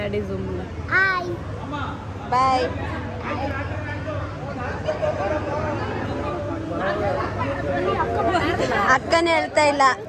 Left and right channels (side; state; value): both; identical; correlation 1.00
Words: ಝೂಮ್. ಬಾಯ್. ಅಕ್ಕನೇ ಹೇಳ್ತಾ ಇಲ್ಲ.